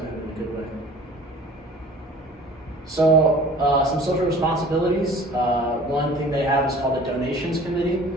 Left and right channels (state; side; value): normal; both; correlation 0.46